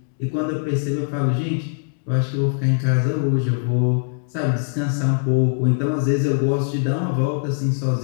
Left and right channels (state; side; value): silent; right; digital silence